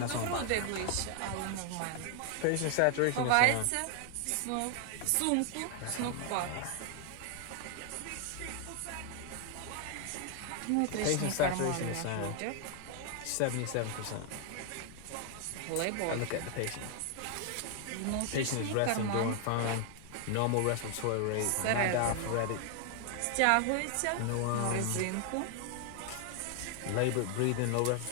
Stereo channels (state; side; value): different; both; correlation 0.00